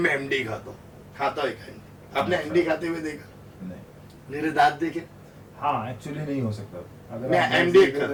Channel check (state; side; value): identical; both; correlation 1.00